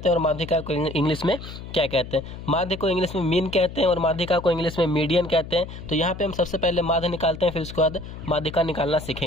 हैं और माध्यिका को इंग्लिश में क्या कहते हैं। माध्य को इंग्लिश में मीन कहते हैं और माध्यिका को इंग्लिश में मीडियन कहते हैं। तो यहाँ पे हम सबसे पहले माध्य निकालते हैं, फिर उसके बाद माध्यिका निकालना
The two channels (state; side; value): noise; left; hum, 12 dB below the sound